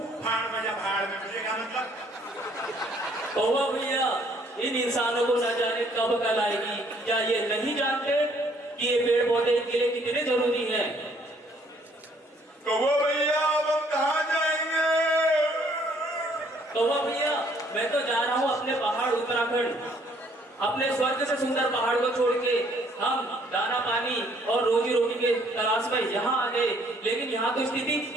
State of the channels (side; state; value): both; normal; correlation 0.63